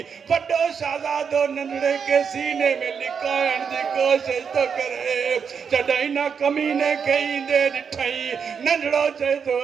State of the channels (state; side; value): quieter; left; 6.6 dB